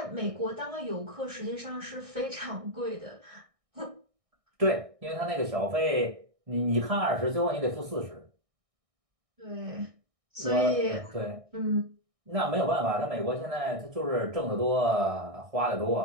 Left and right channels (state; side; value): late; left; 1.6 ms